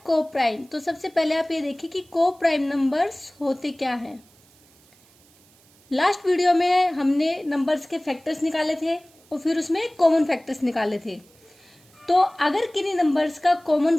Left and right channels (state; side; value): noise; right; hiss, 30 dB below the sound